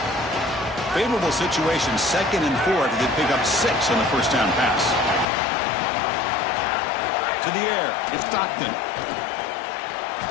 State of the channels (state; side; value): drops out; right; at 5.2 s